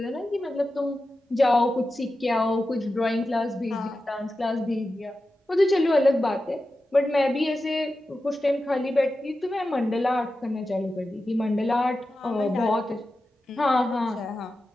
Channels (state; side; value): normal; both; correlation 0.92